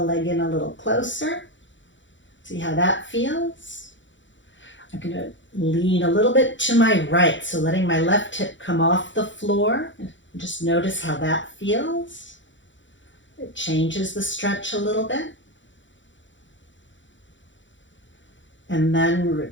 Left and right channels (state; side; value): late; right; 0.54 ms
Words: leg in a little closer. See how that feels? I'm going to lean a little bit to my right, so letting my left hip come off the floor. Just notice how that feels. It changes the stretch a little bit. And then